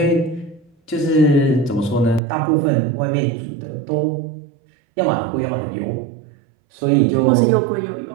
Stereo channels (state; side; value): drops out; left; at 2.2 s